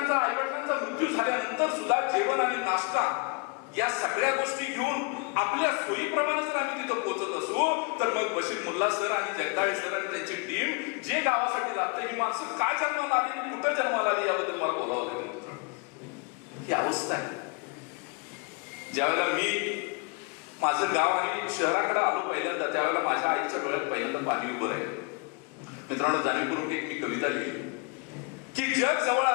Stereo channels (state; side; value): quieter; right; 31.8 dB